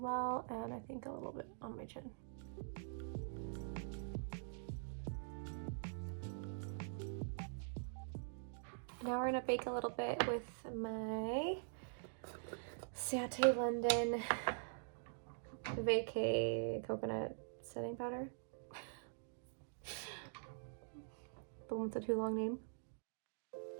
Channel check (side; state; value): left; silent; digital silence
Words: and I think a little bit on my chin. Now we're gonna bake a little bit with my Sate London Vacay Coconut Setting Powder. The one with the too long name.